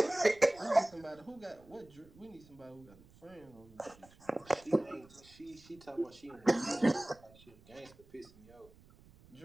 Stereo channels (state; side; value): noise; right; rumble, 25 dB below the sound